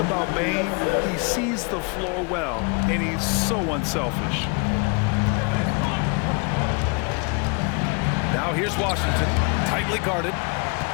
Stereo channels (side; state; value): right; quieter; 32.9 dB